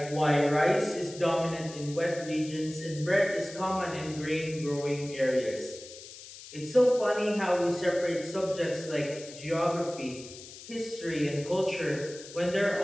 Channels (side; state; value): left; noise; hiss, 15 dB below the sound